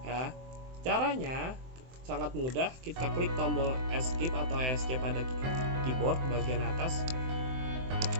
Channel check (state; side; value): late; left; 23 ms